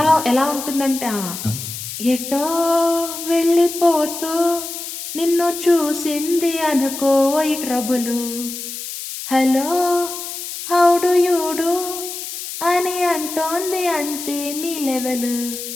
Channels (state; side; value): noise; left; hiss, 8 dB below the sound